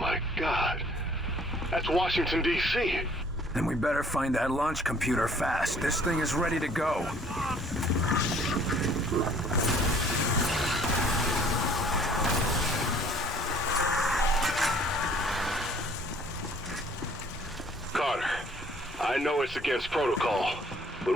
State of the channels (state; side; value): normal; both; correlation 0.56